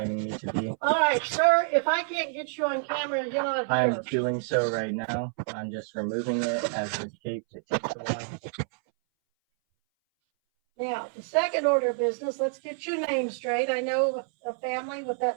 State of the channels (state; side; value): silent; left; 59 dB below the other